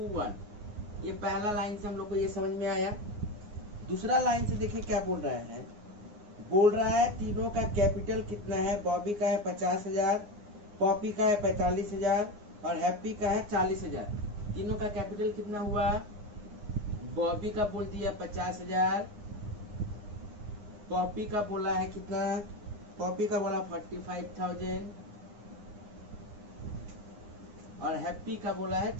ये पहला लाइन से हम लोग को ये समझ में आया। दूसरा लाइन से देखिए क्या बोल रहा है, बोल रहा है तीनों का कैपिटल कितना है, बॉबी का है 50,000, पॉपी का है 45,000 और हैप्पी का है 40,000। तीनों का कैपिटल कितना हुआ, बॉबी का बोल दिया 50,000, पॉपी का बोला है कितना, पॉपी का बोला 45,000 और हैप्पी का बोला है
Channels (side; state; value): left; late; 9.7 ms